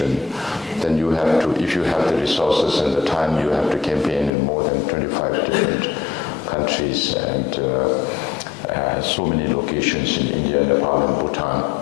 then you have to, if you have the resources and the time, you have to campaign in more than 25 different countries, and so many locations in India, Nepal, and Bhutan.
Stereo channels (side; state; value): right; drops out; at 4.3 s